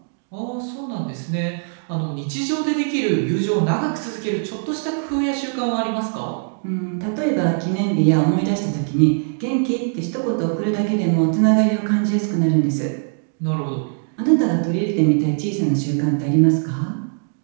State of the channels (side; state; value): left; silent; digital silence